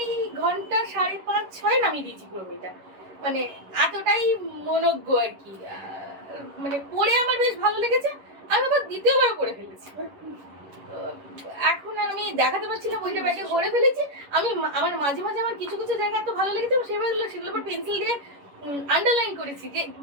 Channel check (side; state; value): left; late; 11 ms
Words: ঘন্টা 5:30-6 নামিয়ে দিয়েছি পুরো বইটা। মানে এতটাই মনোজ্ঞ আর কি। মানে পড়ে আমার বেশ ভালো লেগেছে, আমি আবার দ্বিতীয়বার পড়ে ফেলেছি। এখন আর আমি দেখাতে পারছি না বইটা ব্যাগে ভরে ফেলেছি। আমি আমার মাঝে মাঝে আমার কিছু কিছু জায়গা এত ভালো লেগেছে সেগুলো আবার পেন্সিল দিয়ে আন্ডারলাইন করেছি যে